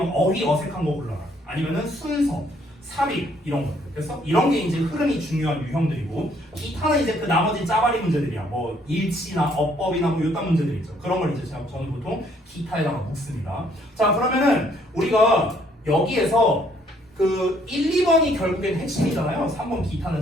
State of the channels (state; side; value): normal; both; correlation 0.66